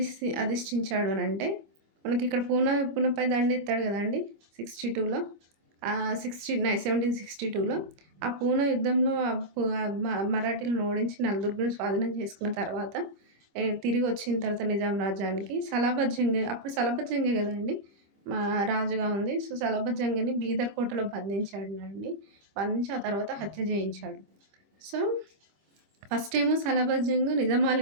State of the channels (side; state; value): left; late; 25 ms